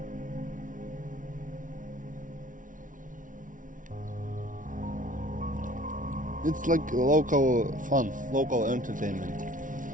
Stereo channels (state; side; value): late; left; 0.38 ms